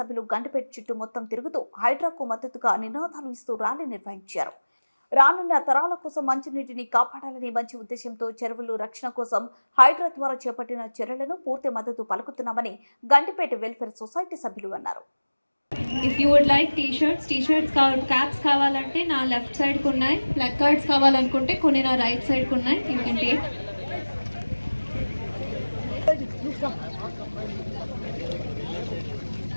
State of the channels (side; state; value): both; inverted; correlation -1.00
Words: గండిపేట చుట్టూ మొత్తం తిరుగుతూ హైడ్రాకు మద్దతుగా నినాదాలు ఇస్తూ ర్యాలీ నిర్వహించారు. రానున్న తరాల కోసం మంచినీటిని కాపాడాలనే మంచి ఉద్దేశంతో చెరువులు రక్షణ కోసం హైడ్రా ద్వారా చేపట్టిన చర్యలను పూర్తి మద్దతు పలుకుతున్నామని గండిపేట వెల్ఫేర్ సొసైటీ సభ్యులు అన్నారు. If you would like t-shirts caps కావాలంటే నా లెఫ్ట్ సైడ్ కు ఉన్నాయి. ప్లగ్ కార్డ్స్ కావాలనుకుంటే కొన్ని నా రైట్ సైడ్ కు ఉన్నాయి. You can take.